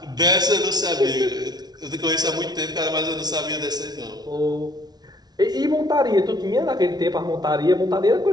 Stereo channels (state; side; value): late; left; 0.19 ms